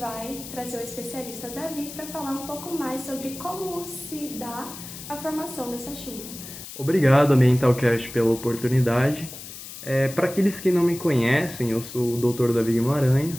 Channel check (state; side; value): noise; left; hiss, 13 dB below the sound